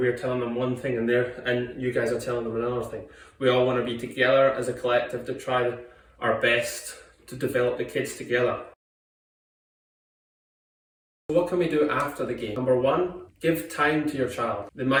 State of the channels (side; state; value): both; identical; correlation 1.00